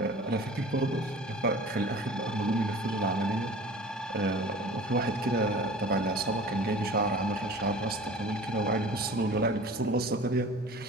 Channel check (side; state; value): both; normal; correlation 0.41